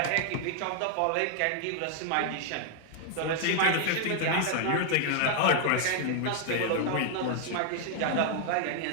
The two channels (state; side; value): different; both; correlation 0.00